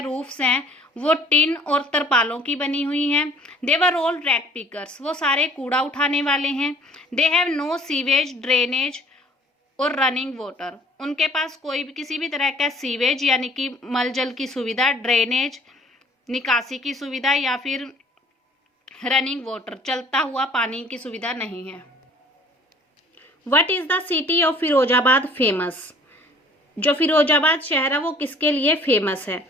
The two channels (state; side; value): normal; both; correlation 0.54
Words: रूफ्स हैं, वो टिन और तरपालों की बनी हुई हैं। They were all rag pickers, वो सारे कूड़ा उठाने वाले हैं। They have no sewage, drainage और रनिंग वाटर, उनके पास कोई भी किसी भी तरह का सीवेज यानी कि मल जल की सुविधा, ड्रेनेज निकासी की सुविधा, या फिर रनिंग वाटर चलता हुआ पानी की सुविधा नहीं है। What is the city of Firozabad famous, जो फिरोजाबाद शहर है वो किसके लिए फेमस है?